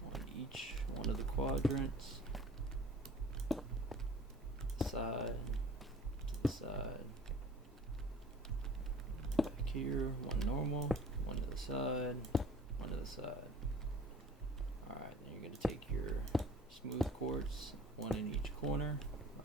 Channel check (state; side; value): normal; both; correlation 0.47